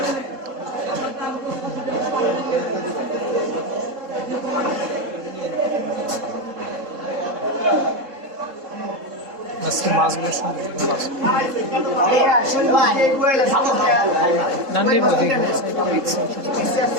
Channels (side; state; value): left; late; 3.8 ms